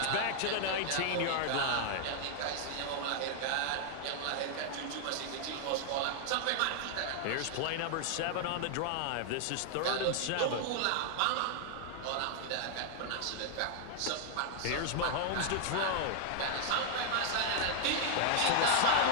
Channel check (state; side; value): different; both; correlation 0.00